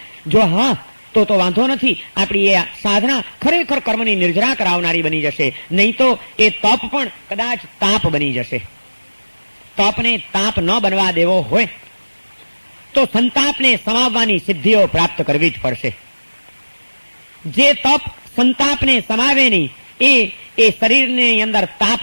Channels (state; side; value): inverted; both; correlation -1.00